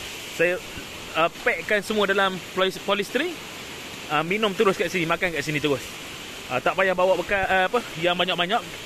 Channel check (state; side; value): identical; both; correlation 1.00